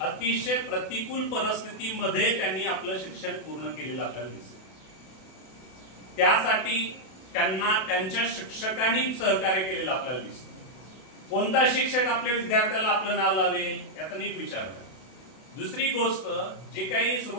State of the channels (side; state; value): right; late; 32 ms